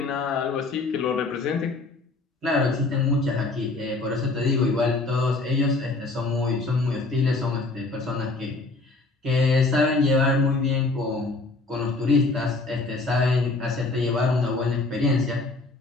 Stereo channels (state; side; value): quieter; right; 3.4 dB